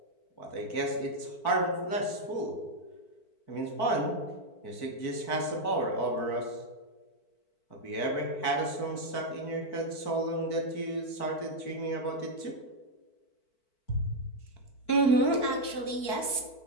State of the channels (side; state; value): right; late; 4.5 ms